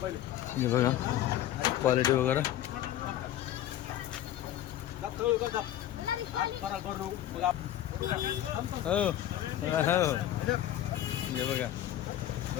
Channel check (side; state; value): right; quieter; 12.3 dB